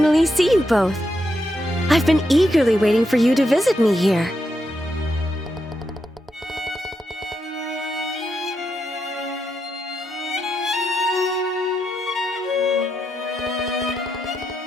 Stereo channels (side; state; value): both; normal; correlation 0.83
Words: see you both. I've been eagerly waiting for you to visit me here.